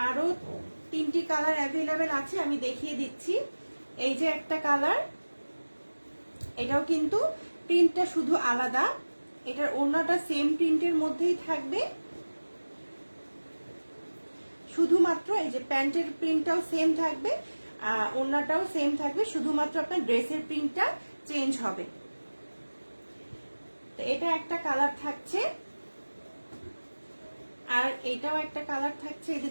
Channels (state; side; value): inverted; both; correlation -1.00